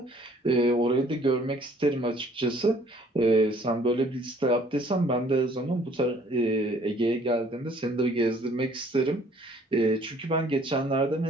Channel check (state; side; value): normal; both; correlation 0.58